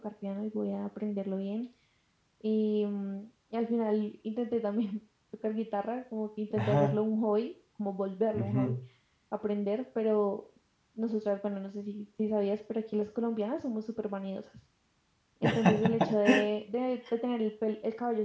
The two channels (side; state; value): both; identical; correlation 1.00